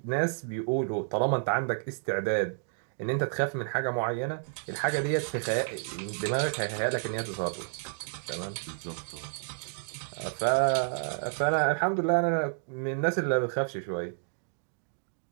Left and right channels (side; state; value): left; silent; digital silence